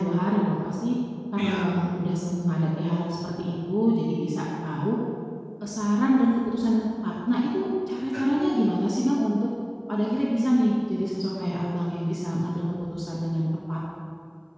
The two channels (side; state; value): both; identical; correlation 1.00